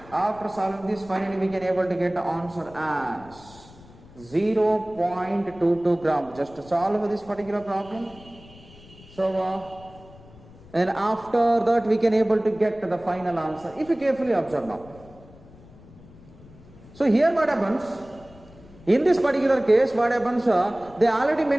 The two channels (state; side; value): noise; left; rumble, 22 dB below the sound